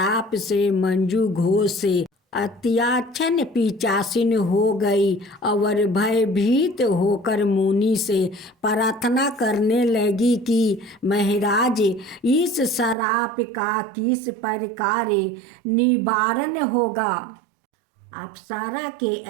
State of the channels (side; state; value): left; drops out; at 13.0 s